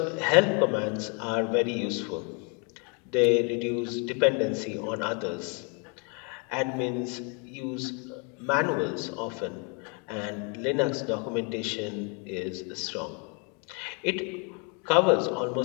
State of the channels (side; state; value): right; quieter; 35.6 dB